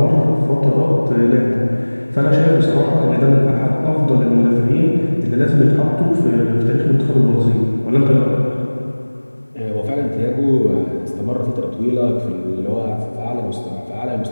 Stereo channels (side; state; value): both; inverted; correlation -1.00